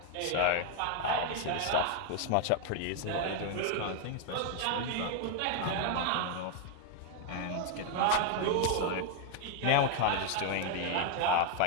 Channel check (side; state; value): both; different; correlation 0.00